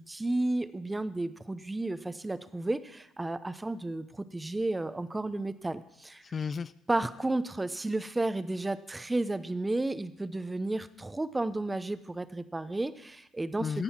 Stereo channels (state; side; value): normal; both; correlation 0.97